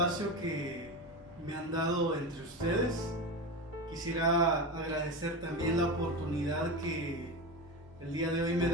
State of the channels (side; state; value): both; normal; correlation 0.22